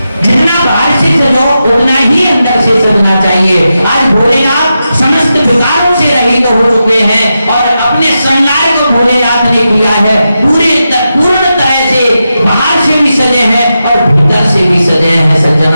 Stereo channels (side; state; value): both; inverted; correlation -0.89